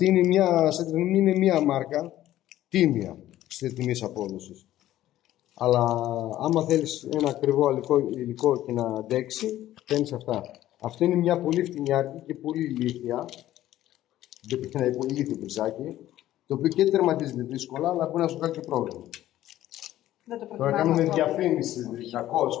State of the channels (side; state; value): right; quieter; 13.8 dB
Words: είναι μια, είναι μια μάρκα τίμια στη τιμή απόδοσης. Αλλά άμα θέλεις ένα ακριβό υλικό και να αντέξει, παίρνεις αυτά. Αυτή είναι μια πολύ φτηνιάρικη και πολύ ηλίθια. Ένα πολύ ηλίθιο μπριζάκι, το οποίο και τερματίζεται δύσκολα, αλλά μπορεί να σου κάνει και πρόβλημα. Τώρα κάνουμε διαφήμιση,